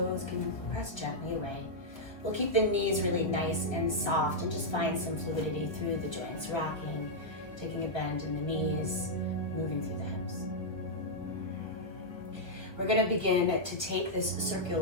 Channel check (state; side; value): late; right; 1.3 ms